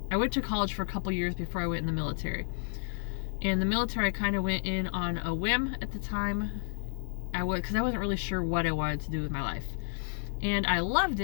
went to college for a couple years before I went in the military. And the military, I kind of went in on a whim at the time. Because I wasn't really sure what I wanted to do with my life. And I loved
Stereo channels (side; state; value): right; silent; digital silence